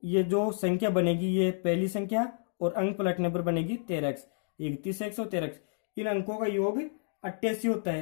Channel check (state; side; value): silent; right; digital silence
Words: ये जो संख्या बनेगी ये पहली संख्या और अंक पलटने पर बनेगी 13x, 31x और 13x। इन अंकों का योग 88 होता